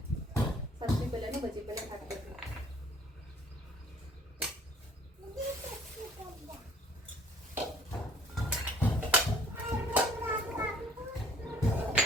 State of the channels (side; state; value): both; normal; correlation 0.56